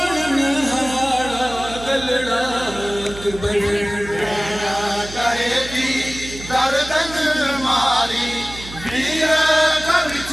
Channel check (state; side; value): noise; right; hum, 14 dB below the sound